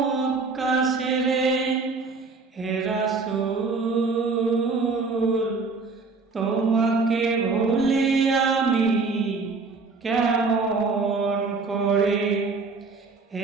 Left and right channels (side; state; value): left; quieter; 4.2 dB